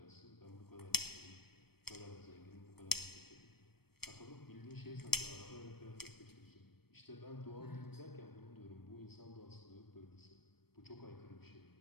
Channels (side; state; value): right; late; 0.96 ms